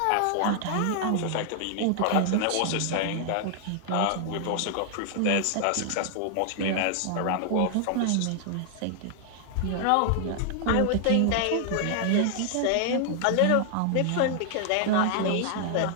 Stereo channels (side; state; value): both; different; correlation 0.00